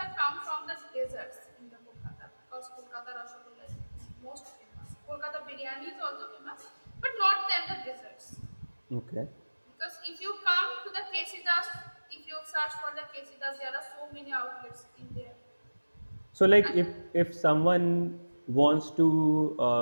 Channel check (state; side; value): inverted; both; correlation -1.00